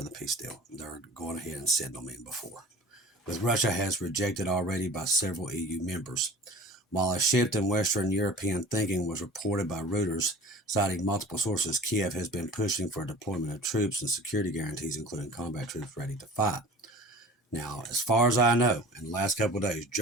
the peace deal. They're going ahead and sending them in before. With Russia has rejected already by several EU members. While a shift in Western European thinking was reported by Reuters, citing multiple sources, Kiev has been pushing for a deployment of troops and security guarantees, including combat troops ready to fight. Now, as far as I know, in the last couple of days,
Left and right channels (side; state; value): both; normal; correlation 0.42